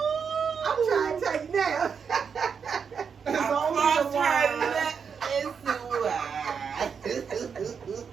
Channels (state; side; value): quieter; left; 6.4 dB